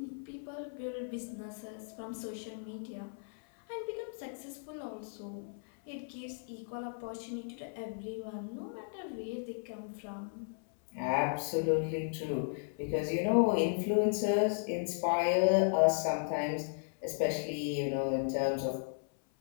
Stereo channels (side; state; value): right; silent; 54 dB below the other